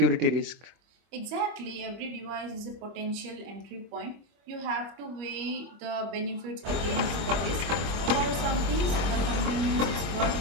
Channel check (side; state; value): left; late; 24 ms